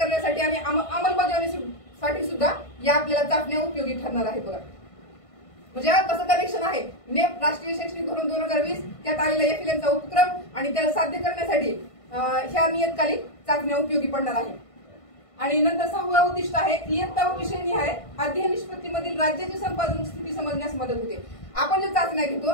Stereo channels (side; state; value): right; late; 1.5 ms